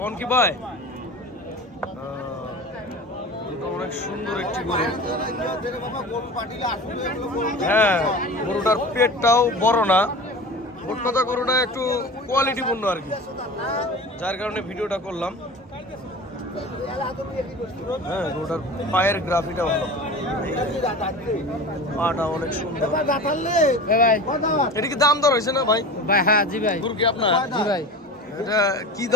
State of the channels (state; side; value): normal; both; correlation 0.34